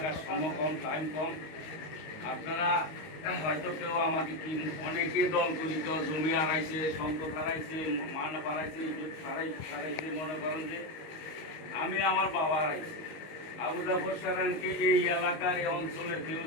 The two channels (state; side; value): late; right; 19 ms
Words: সময় কম, টাইম কম। আপনারা হয়তো কেউ আমাকে কি অনেকে দল করি, কেউ জমি হারাইছে, সম্পদ হারাইছে, মান হারাইছে, ইজ্জত হারাইছে, মনে করেন যে আমি আমার বাবা হারাইছি। আবু জাফর সারানকে এই এলাকার এই অঞ্চলের কেউ